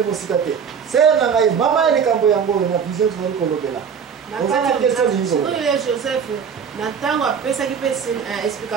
mosika te sere na ngai mama ya likambo yango oyo na vision tozali kolobela ozana question oyo joseph na ntango apesaki mpe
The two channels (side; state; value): left; quieter; 6.9 dB